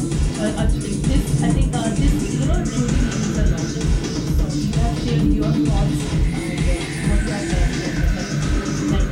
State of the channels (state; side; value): identical; both; correlation 1.00